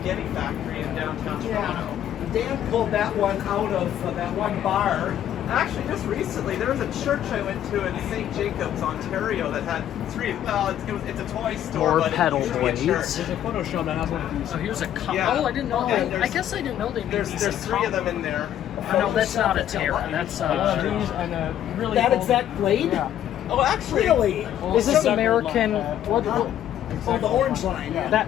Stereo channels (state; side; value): quieter; right; 11.1 dB